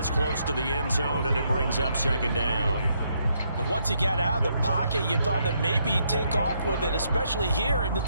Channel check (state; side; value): inverted; both; correlation -0.75